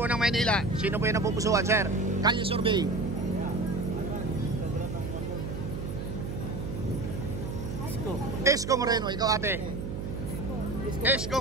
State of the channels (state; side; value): noise; right; hum, 5 dB below the sound